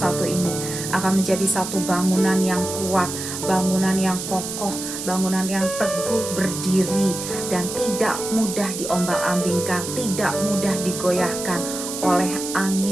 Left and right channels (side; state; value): right; noise; hiss, 7 dB below the sound